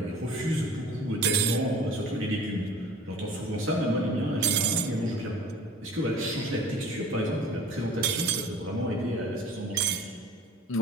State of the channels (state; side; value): normal; both; correlation 0.46